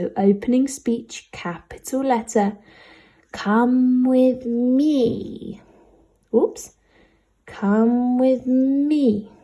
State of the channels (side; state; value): both; identical; correlation 1.00